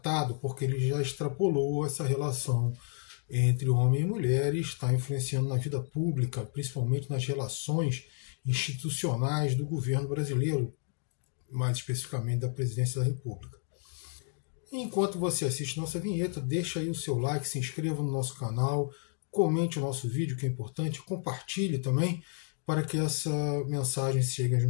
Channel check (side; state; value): right; silent; 55 dB below the other